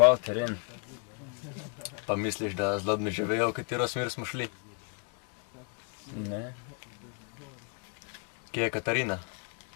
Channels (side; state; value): right; quieter; 38.9 dB